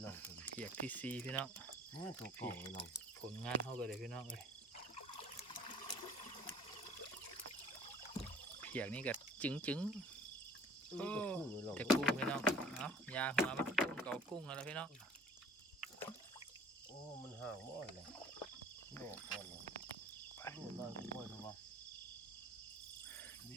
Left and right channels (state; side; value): normal; both; correlation 0.49